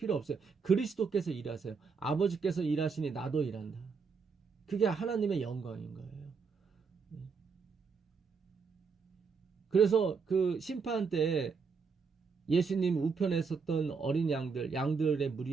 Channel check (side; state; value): left; quieter; 5.3 dB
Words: 없어요. 그리스도께서 일하세요. 아버지께서 일하시니 나도 일한다. 그게 하나님의 영광인 거예요. 그래서 그 심판 때 예수님 우편에 섰던 어린 양들의